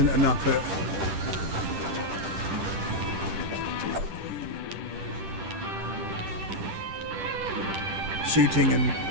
enough at shooting and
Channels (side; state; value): left; late; 10 ms